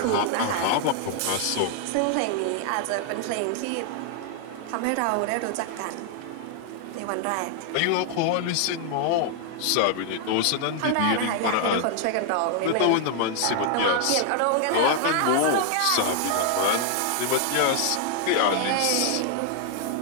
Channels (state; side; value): different; both; correlation 0.00